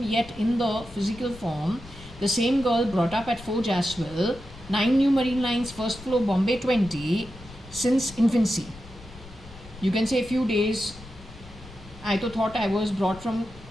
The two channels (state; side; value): noise; left; rumble, 18 dB below the sound